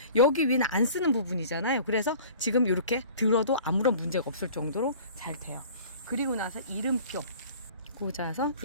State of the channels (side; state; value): both; inverted; correlation -0.45